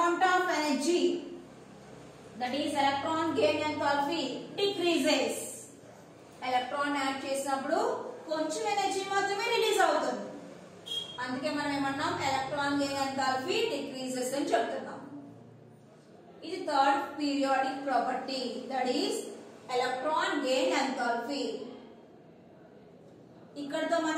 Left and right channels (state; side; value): identical; both; correlation 1.00